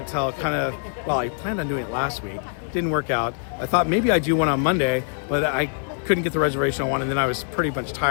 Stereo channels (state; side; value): silent; right; 58 dB below the other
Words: kind of, well, I planned on doing it last week. Didn't work out. I thought maybe I'd do one on Monday, but I couldn't get the reservation on one, and then I was pretty much